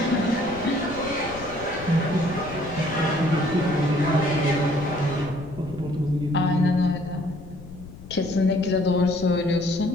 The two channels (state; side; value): noise; left; rumble, 15 dB below the sound